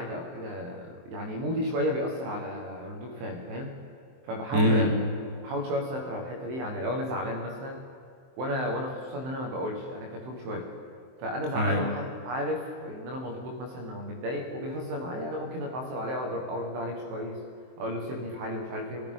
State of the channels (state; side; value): late; left; 23 ms